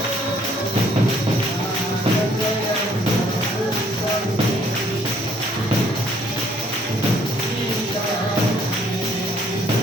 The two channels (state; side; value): normal; both; correlation 0.63